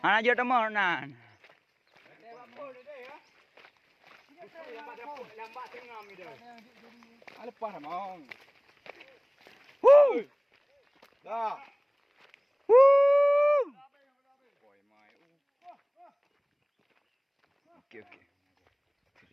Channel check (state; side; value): identical; both; correlation 1.00